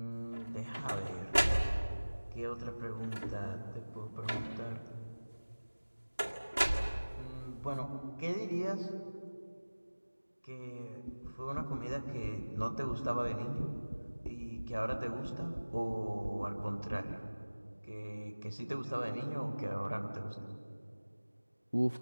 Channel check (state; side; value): inverted; both; correlation -1.00